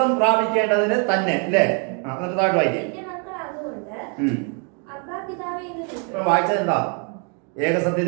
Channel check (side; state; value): left; quieter; 38.7 dB